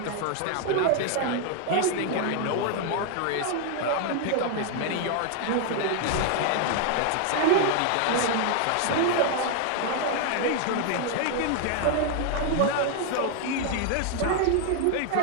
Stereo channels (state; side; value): different; both; correlation 0.00